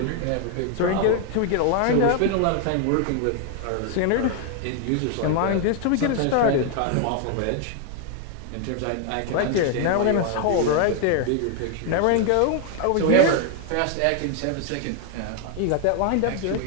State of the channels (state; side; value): different; both; correlation 0.00